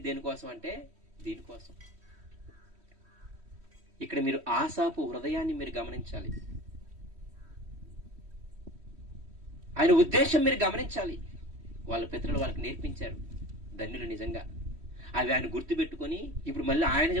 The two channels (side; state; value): left; late; 3.1 ms